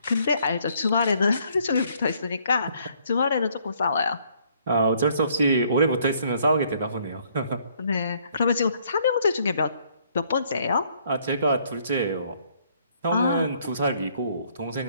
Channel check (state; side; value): inverted; both; correlation -0.65